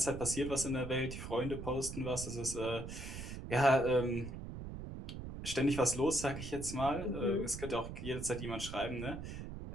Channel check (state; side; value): noise; right; rumble, 8 dB below the sound